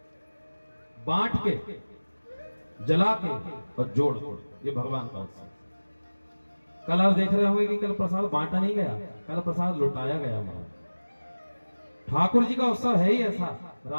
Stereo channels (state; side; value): inverted; both; correlation -1.00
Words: बांट के, जला के और जोड़ के, ये भगवान का उत्सव। कल आप देख रहे होंगे कि कल प्रसाद बांटा नहीं गया, कल प्रसाद लुटाया गया। ठाकुर जी का उत्सव है ही ऐसा,